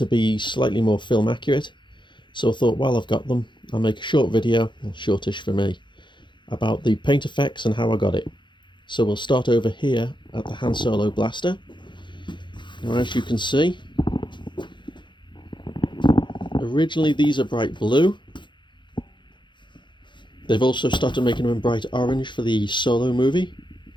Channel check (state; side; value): late; right; 0.23 ms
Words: be slightly more film accurate, so I thought while I've got them I'll make a short video, well, shortish for me, about the paint effects and how I got it. So we'll start over here at the Han Solo blaster. Now as you can see, originally these are bright blue. They've also started making them in bright orange for the Solo movie.